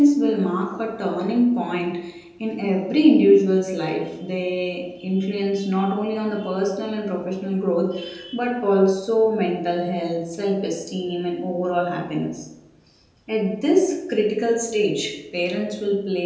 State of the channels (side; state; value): both; identical; correlation 1.00